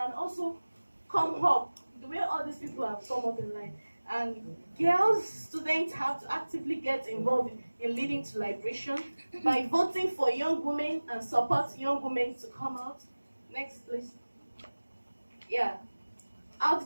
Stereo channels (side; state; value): both; inverted; correlation -1.00